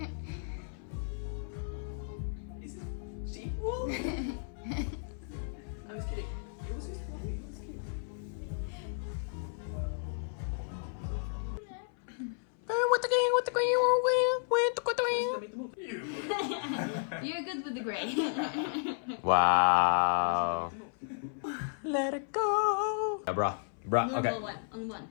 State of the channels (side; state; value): right; silent; 56 dB below the other